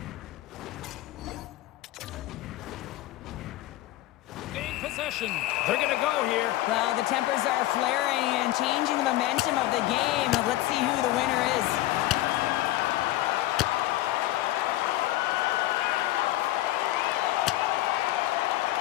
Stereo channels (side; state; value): right; quieter; 16.0 dB